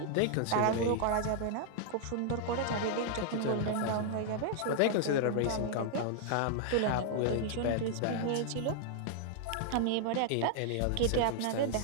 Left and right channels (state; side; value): different; both; correlation 0.00